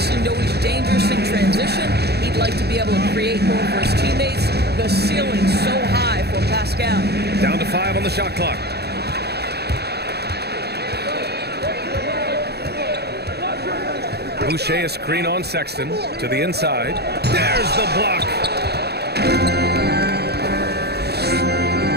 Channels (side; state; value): left; late; 0.47 ms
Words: know he's dangerous in transition. He'd like to be able to create more for his teammates. The ceiling's so high for Pascal. Down to 5 on the shot clock. Boucher a screen on Sexton to the inside. There's the block.